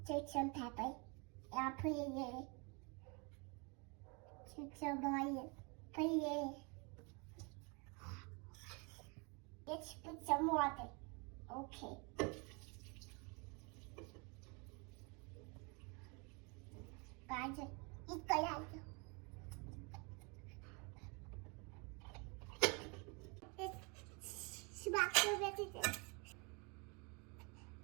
Take some pepper. I put it in. Take some oil. Put it in. Let's put some water. Okay. Guys, 이거야.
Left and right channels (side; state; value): left; quieter; 31.6 dB